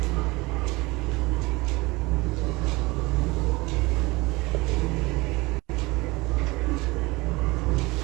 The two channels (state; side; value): quieter; left; 22.8 dB